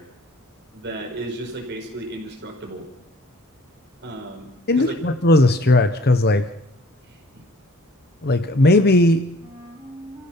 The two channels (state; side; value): normal; both; correlation 0.55